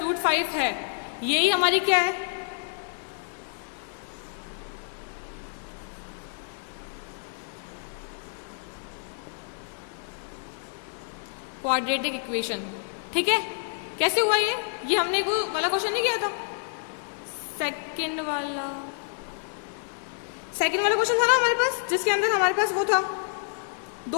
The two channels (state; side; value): silent; right; digital silence